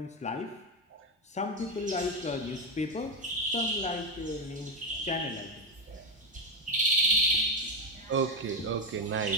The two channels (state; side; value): normal; both; correlation 0.10